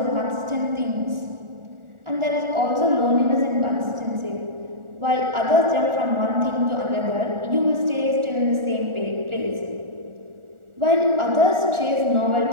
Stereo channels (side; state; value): left; late; 1.4 ms